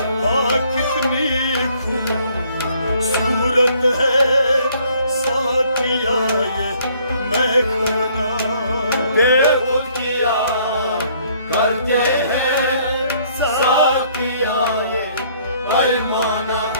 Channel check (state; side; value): inverted; both; correlation -0.62